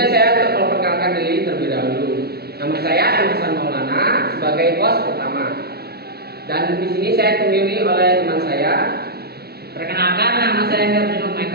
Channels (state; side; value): late; left; 0.46 ms